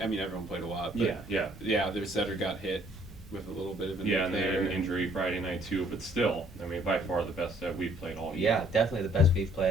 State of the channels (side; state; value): both; normal; correlation 0.61